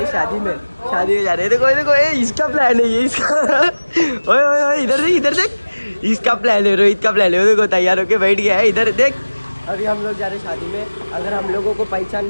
शादी में जा रहे। देखो देखो, ये इसका प्लान है, ये इसका ओए ओए ओए, इधर देख, इधर देख, इसका प्लान है, रोहित का प्लान है। देखो तैयार होके बैठ गया है, इधर देख। अभी हम लोग जा रहे शादी में। अगर हम लोगों को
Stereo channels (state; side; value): inverted; both; correlation -1.00